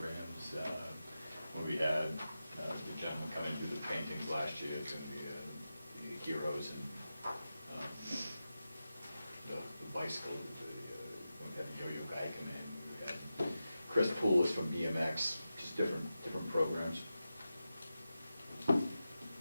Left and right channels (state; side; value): inverted; both; correlation -0.92